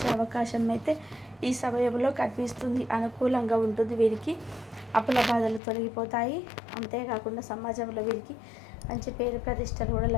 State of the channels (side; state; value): right; drops out; at 5.6 s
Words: అవకాశం అయితే ఈ సమయంలో కనిపిస్తుంది. అనుకూలంగా ఉంటుంది. వీరికి అప్పుల బాధలు తొలగిపోతాయి. అంతేకాకుండా సమాజంలో వీరికి మంచి పేరు ప్రతిష్టలు కూడా